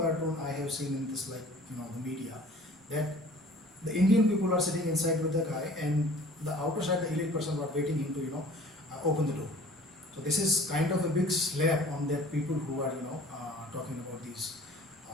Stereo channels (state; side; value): normal; both; correlation 0.48